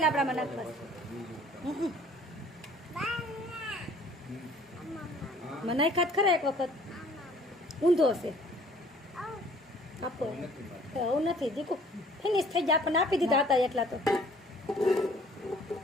લાબડામાં નાખવા. મને નાખ્યા ખરા એક વખત, ઊંધો હશે. આપો એવું નથી દીકુ, ફિનિશ થઈ જાય. આપણને આપી દીધા હતા એટલા તો.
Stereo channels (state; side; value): normal; both; correlation 0.55